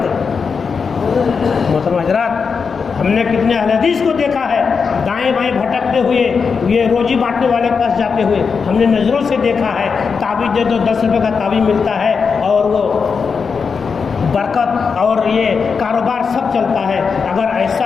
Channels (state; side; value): quieter; right; 5.6 dB